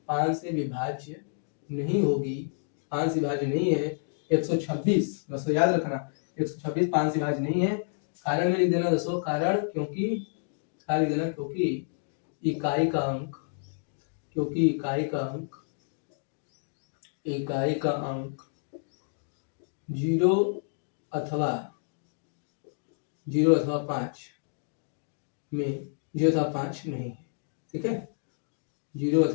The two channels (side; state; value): right; silent; digital silence